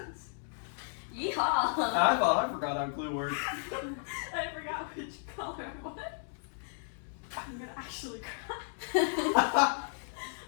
Yeehaw! I thought I forgot how Clue worked. I forgot which color it was. I'm gonna actually cry.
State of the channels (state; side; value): silent; right; 55 dB below the other